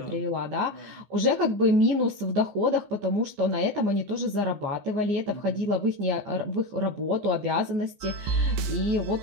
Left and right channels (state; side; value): late; left; 15 ms